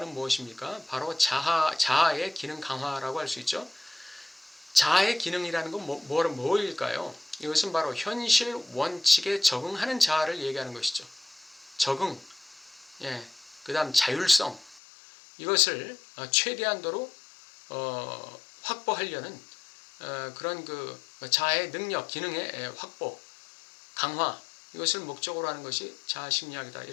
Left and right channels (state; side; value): drops out; right; at 14.8 s